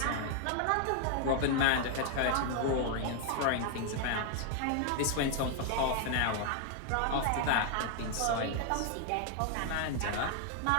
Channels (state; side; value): different; both; correlation 0.00